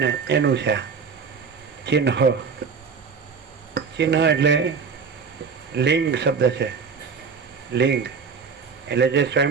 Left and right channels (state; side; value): quieter; left; 5.7 dB